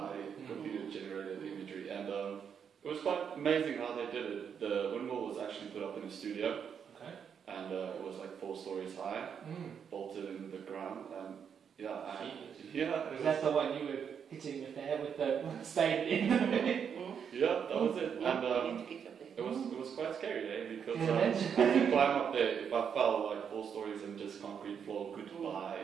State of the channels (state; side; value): quieter; left; 7.4 dB